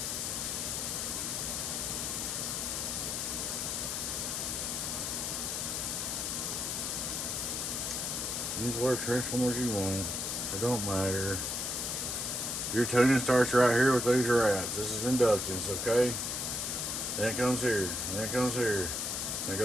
Use whatever transformers you want. It don't matter. Your tuning starts right here with these rats. This is inductance, okay? Then it comes here. Then it comes here. And it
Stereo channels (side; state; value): left; noise; hiss, 1 dB below the sound